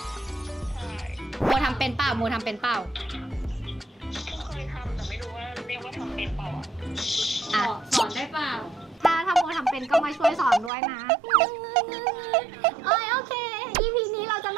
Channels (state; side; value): drops out; left; at 10.7 s